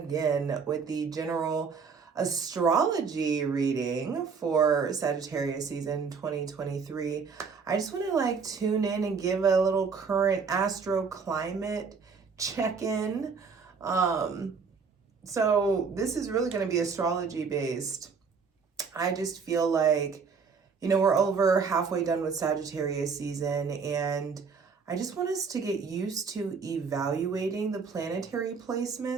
with the general astrology reading for Sagittarius season 2023. I just want to tune in and give a little current astro climate check-in. So this is really going to be astrology based. I just feel like, we're over halfway done with Sagittarius season, and I just want us to get used to evaluating the planetary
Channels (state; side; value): quieter; left; 5.4 dB